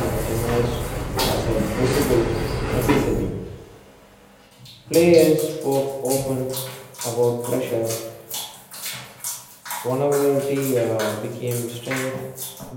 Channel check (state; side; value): identical; both; correlation 1.00